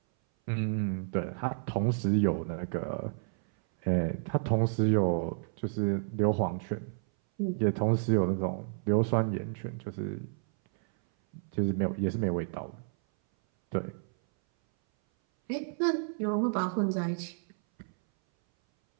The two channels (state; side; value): silent; left; 57 dB below the other